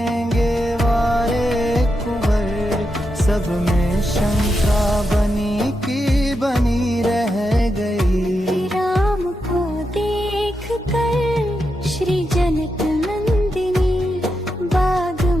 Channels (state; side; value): normal; both; correlation 0.86